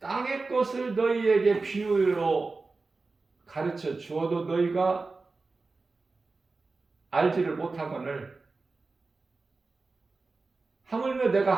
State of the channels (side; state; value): left; quieter; 3.8 dB